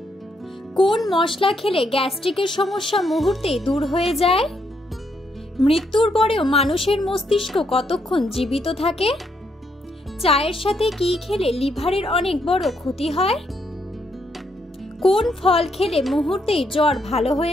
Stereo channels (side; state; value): both; normal; correlation 0.76